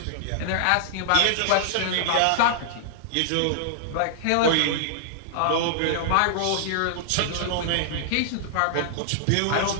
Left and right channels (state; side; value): different; both; correlation -0.01